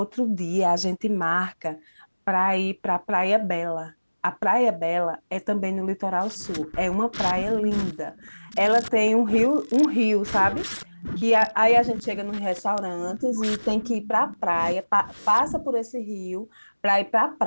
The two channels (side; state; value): both; inverted; correlation -1.00